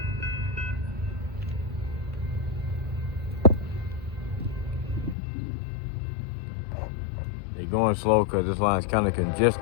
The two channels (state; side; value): drops out; right; at 5.2 s